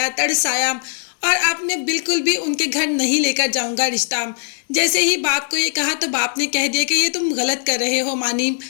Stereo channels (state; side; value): silent; right; digital silence